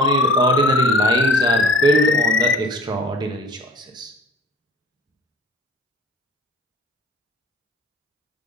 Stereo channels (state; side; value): normal; both; correlation 0.45